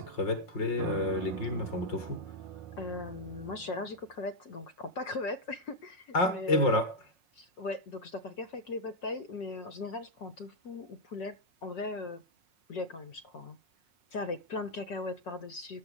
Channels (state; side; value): late; right; 5.5 ms